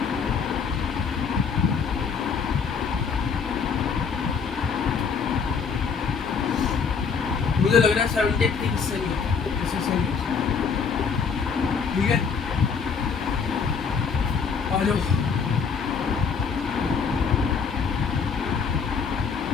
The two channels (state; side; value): quieter; right; 5.9 dB